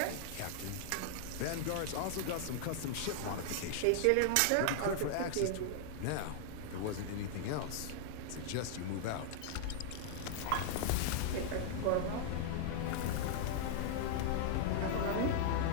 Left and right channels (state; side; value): different; both; correlation -0.01